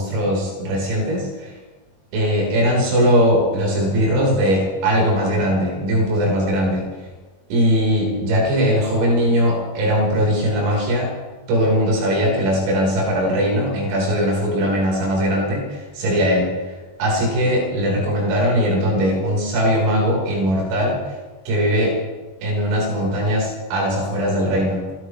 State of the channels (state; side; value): late; left; 21 ms